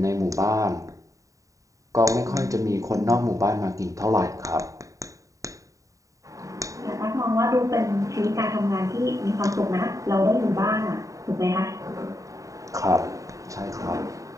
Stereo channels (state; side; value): late; left; 0.16 ms